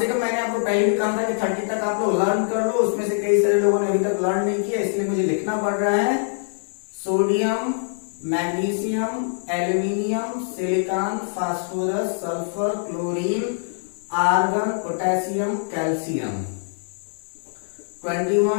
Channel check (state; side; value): silent; right; 62 dB below the other